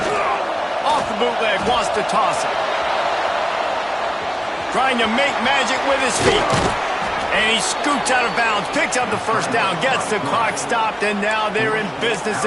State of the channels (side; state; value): both; identical; correlation 1.00